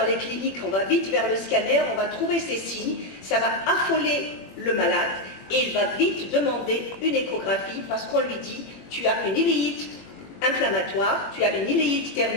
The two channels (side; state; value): right; late; 21 ms